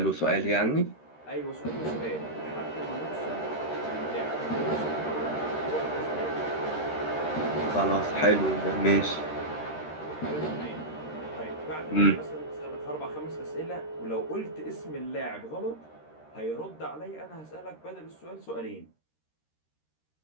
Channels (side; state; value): right; late; 13 ms